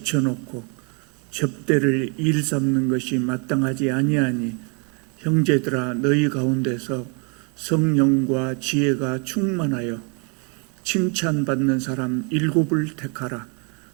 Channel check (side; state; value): left; quieter; 35.7 dB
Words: 접대를 일삼는 것이 마땅하지 아니하니 형제들아 너희 가운데서 성령과 지혜가 충만하여 칭찬받는 사람 7을 택하라.